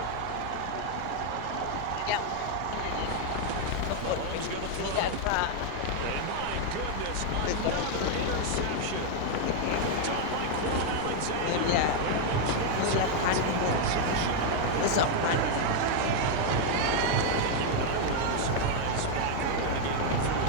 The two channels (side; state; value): both; different; correlation 0.01